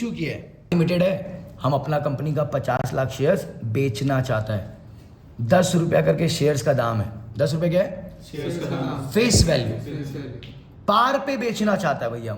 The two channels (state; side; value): identical; both; correlation 1.00